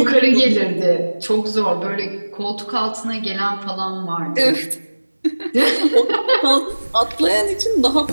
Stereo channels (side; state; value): both; inverted; correlation -1.00